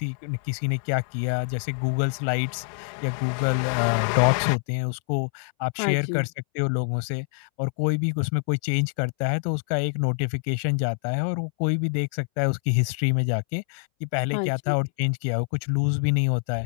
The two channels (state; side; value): silent; right; 61 dB below the other